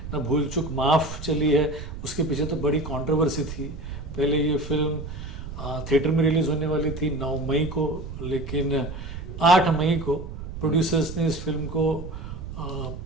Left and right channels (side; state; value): right; noise; rumble, 9 dB below the sound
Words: ना भूल चूक माफ़ चली है, उसके पीछे तो बड़ी कंट्रोवर्सी थी। पहले ये फिल्म थिएटर में रिलीज़ होने वाली थी 9 मई को, लेकिन 8 मई को प्रोड्यूसर्स ने इस फिल्म को